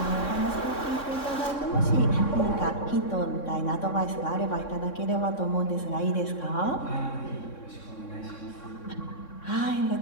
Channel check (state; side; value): late; right; 3.6 ms